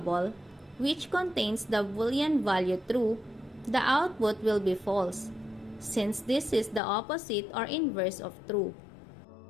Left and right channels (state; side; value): drops out; right; at 6.8 s